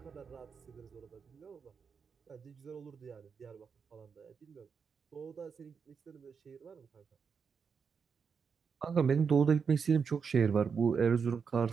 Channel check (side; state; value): left; quieter; 6.0 dB